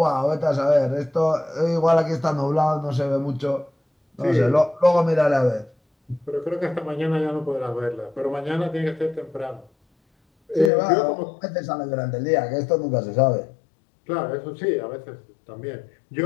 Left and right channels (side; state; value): right; drops out; at 10.7 s